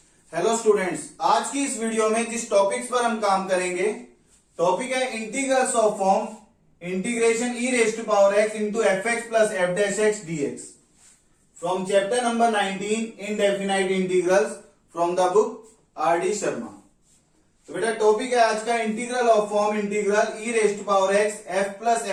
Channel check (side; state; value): both; identical; correlation 1.00